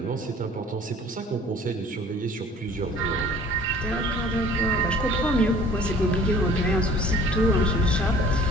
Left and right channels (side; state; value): both; normal; correlation 0.50